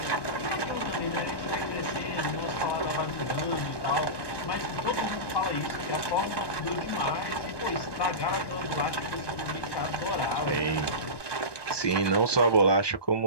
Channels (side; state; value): right; late; 1.1 ms